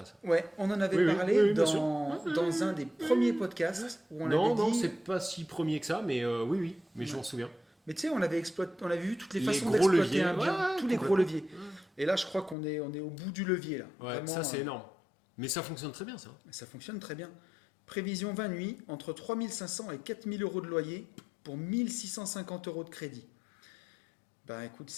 ça. Ouais, on en avait Oui, parlé bien sûr. dans un des premiers podcasts où on Non, avait dit. c'est pas si premier que ça, mais oui, mais je m'en souviens. Mais tu sais, on avait vu toutes les Les façons gros d'exploiter leviers, un bien, ouais, tous les gros leviers. Et là, je crois qu'on est au bout du levier là. Ouais, Vraiment, ça c'est énorme. Mais ça fonctionne très bien, ça. Ça fonctionne très bien. Prévision 20 nuits, entre 3 500 et 4 000 euros de loyer pour 1 650 euros de crédit. Bah écoute,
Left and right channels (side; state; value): right; drops out; at 12.6 s